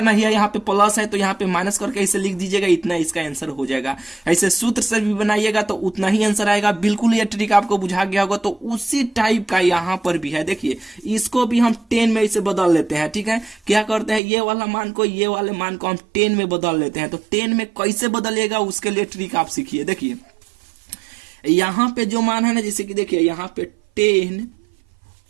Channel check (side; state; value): left; drops out; at 14.2 s